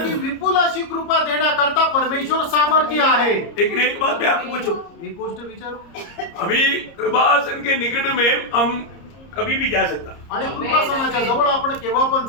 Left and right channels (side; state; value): right; late; 30 ms